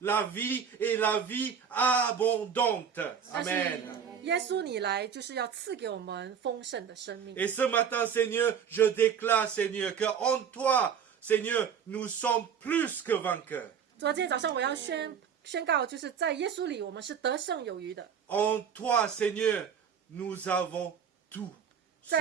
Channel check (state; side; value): quieter; left; 7.5 dB